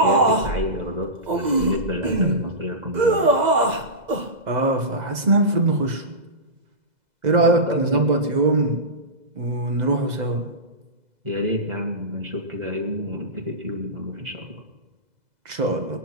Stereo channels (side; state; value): left; late; 2.0 ms